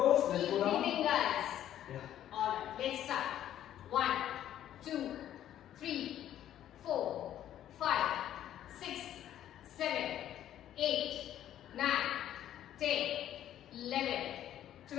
Let's Keep go down. breathing, guys. Yeah. Alright, let's start. 1, 2, 3, 4, 5, 6, 7, 8, 9, 10, 11,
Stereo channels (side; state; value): right; quieter; 11.5 dB